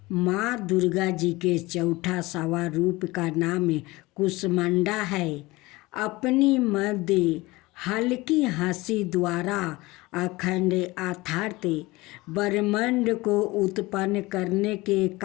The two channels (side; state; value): right; quieter; 21.3 dB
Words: दुर्गा जी के चौथा सवा रूप का नाम कुसमंडा है। अपनी मध्य हल्की हंसी द्वारा अखंड अथार्थ ब्रह्मांड को उत्पन्न करने के